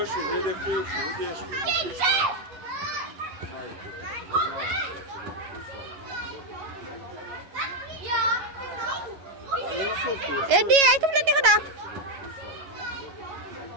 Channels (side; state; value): left; late; 11 ms